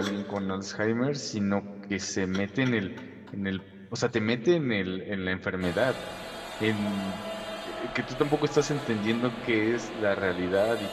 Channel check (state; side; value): identical; both; correlation 1.00